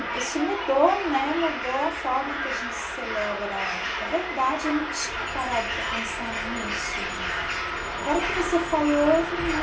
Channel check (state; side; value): identical; both; correlation 1.00